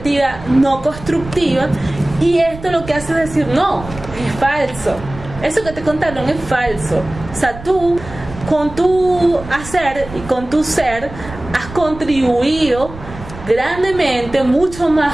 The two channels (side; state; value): right; noise; rumble, 14 dB below the sound